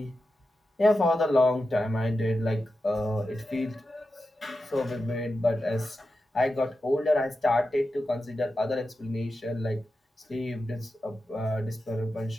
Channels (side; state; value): both; normal; correlation 0.91